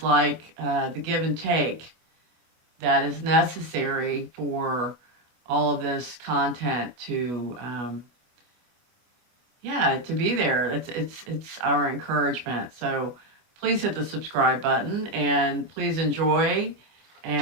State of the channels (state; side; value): late; left; 25 ms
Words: like the give and take that is necessary for all of this content to be there. It's our encouragement. So please hit the subscribe button and please enjoy.